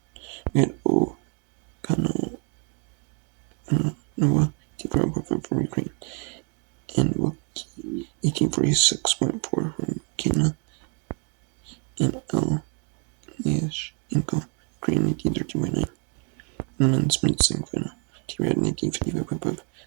We had O. Kano Noah, 1845 from Ukraine, and Wookie, 1846.4 from Kenya, and L. Niash Inko, Ukraine, 1813.9. And then sprint sing final. T-Rad, 1955.5.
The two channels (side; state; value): left; quieter; 36.4 dB